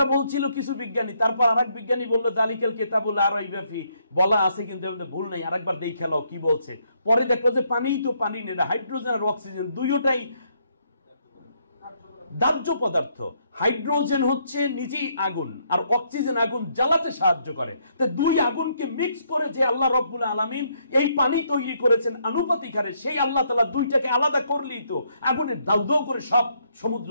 বলছিল কিছু বিজ্ঞানী, তারপর আরেক বিজ্ঞানী বললো যালিকাল কিতাবুল লা রাইবা ফি, বলা আছে কিন্তু ভুল নাই, আরেকবার দেখে নাও কি বলছে। পরে দেখলো যে পানিই তো পানি নেই, হাইড্রোজেন আর অক্সিজেন দুইটাই দাহ্য পদার্থ। হাইড্রোজেন হচ্ছে নিজেই আগুন, আর অক্সিজেন আগুন জ্বালাতে সাহায্য করে। তো দুই আগুনকে মিক্স করে যে আল্লাহ রাব্বুল আলামিন এই পানি তৈরি করেছেন আনুপাতিক হারে, সেই আল্লাহ তাআলা দুইটাকে আলাদা করলেই তো আগুনের দাউ দাউ করে সব সমুদ্র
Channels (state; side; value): inverted; both; correlation -0.72